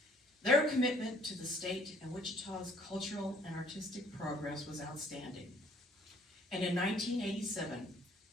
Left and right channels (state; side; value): normal; both; correlation 0.59